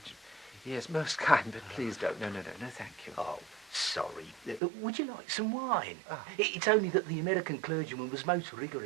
Yes, most kind, but please don't. No, thank you. Oh, sorry. Would you like some wine? Ah. It's only that the American clergyman was most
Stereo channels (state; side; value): drops out; left; at 4.6 s